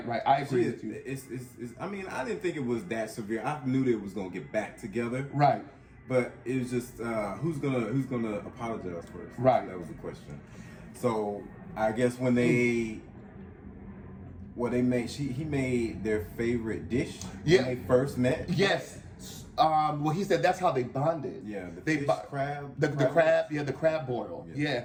I agree with you. It's I mean, I didn't think it was that severe. I knew they was gonna get back together. Right. But it was just who's gonna apologize first? Right. That was the question. So I guess when he made their favorite dish when they first met. Yes. Well, he said that's how they bonded. Yeah, the crab. The crab boil.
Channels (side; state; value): both; identical; correlation 1.00